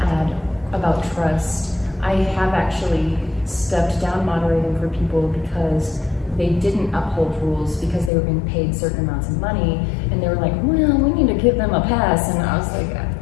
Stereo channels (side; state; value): right; drops out; at 8.1 s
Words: add about trust, I have actually stepped down moderating for people because they didn't uphold rules because they were being paid certain amounts of money, and they were like, well, we need to give them a pass. And I was like,